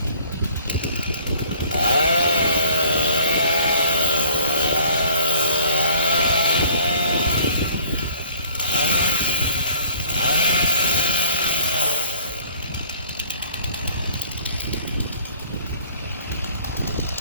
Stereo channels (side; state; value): both; inverted; correlation -0.54